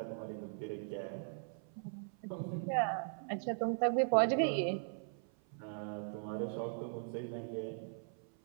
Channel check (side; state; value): left; silent; 52 dB below the other